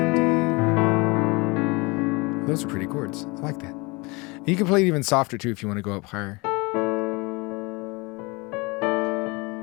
Those are pretty chords. I like that. And you can play it even softer too if you want to go up higher.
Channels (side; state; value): right; quieter; 26.4 dB